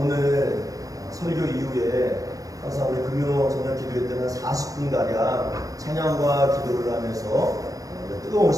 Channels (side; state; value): left; late; 0.17 ms